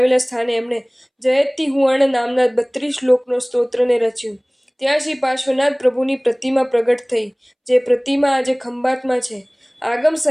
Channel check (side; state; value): both; identical; correlation 1.00